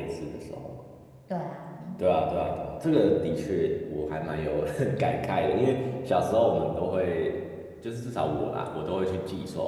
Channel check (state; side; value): identical; both; correlation 1.00